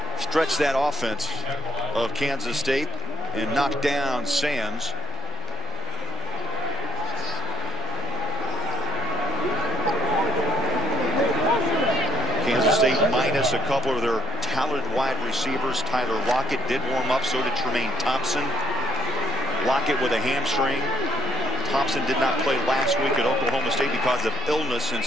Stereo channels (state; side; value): normal; both; correlation 0.66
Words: stretched that offense of Kansas State and knocked down Sams. Kansas State minus a couple of their talented wide receivers. Tyler Lockett did warm up, so did Tremaine Thompson. Lockett with a hamstring. Thompson did not play last week at Oklahoma State because of illness, and